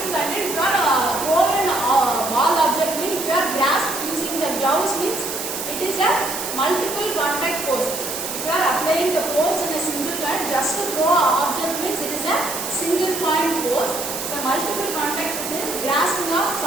contact. If you are throwing a ball object, means if you are grasped using the gloves, means it is a multiple contact force. If you are applying the force in a single point, just to throw an object, means it is a single point force. The multiple contact is grasping of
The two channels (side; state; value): right; noise; hiss, 5 dB below the sound